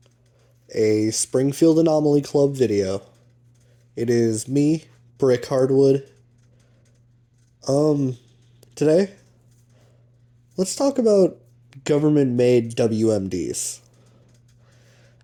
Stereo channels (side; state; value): both; identical; correlation 1.00